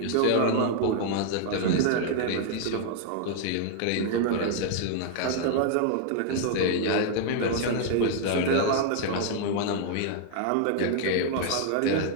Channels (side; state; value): both; different; correlation 0.00